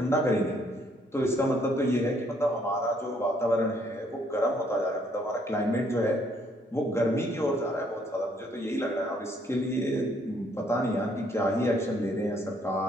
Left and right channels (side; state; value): both; normal; correlation 0.67